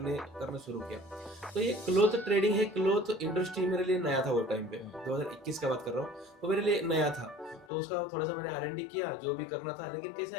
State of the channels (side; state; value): right; drops out; at 7.7 s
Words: शुरू किया। तो ये क्लोथ ट्रेडिंग है, क्लोथ इंडस्ट्री मेरे लिए नया था वो टाइम पे, 2021 का बात कर रहा हूँ, तो मेरे लिए नया था। तो उसका थोड़ा सा मैंने R&D किया जो भी करना था, लेकिन